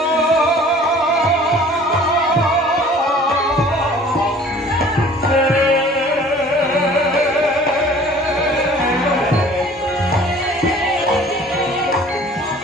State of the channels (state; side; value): normal; both; correlation 0.49